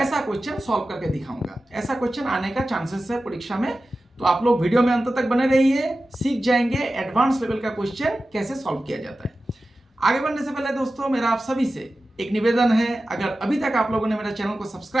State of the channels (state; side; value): normal; both; correlation 0.94